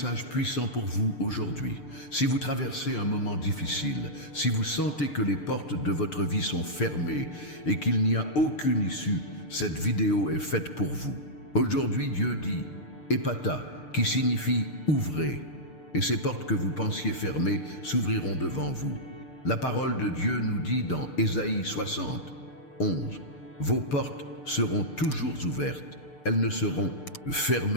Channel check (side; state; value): right; late; 6.7 ms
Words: puissant pour vous aujourd'hui. Si vous traversez un moment difficile, si vous sentez que les portes de votre vie sont fermées et qu'il n'y a aucune issue, cette vidéo est faite pour vous. Aujourd'hui, Dieu dit « Ephphatha », qui signifie « ouvrez », et ces portes que vous pensiez fermées s'ouvriront devant vous. La parole de Dieu nous dit dans Ésaïe 60, 11, « Vos portes seront toujours ouvertes. Elles ne seront